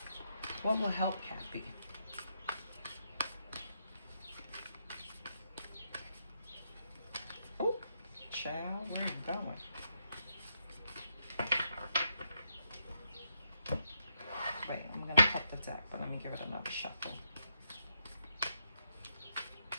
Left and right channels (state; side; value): inverted; both; correlation -0.80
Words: What will help Cappy? Oh, child, where are you going? Wait, I'm going to cut the deck, but let me give it another shuffle.